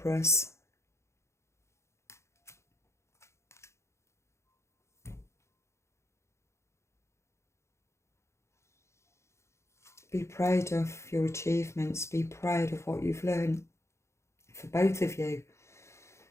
Be proud of your achievements. Be proud of what you've learned. For both of you,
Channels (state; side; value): late; right; 0.13 ms